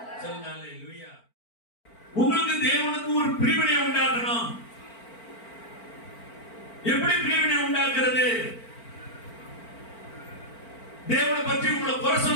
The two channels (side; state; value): right; late; 4.4 ms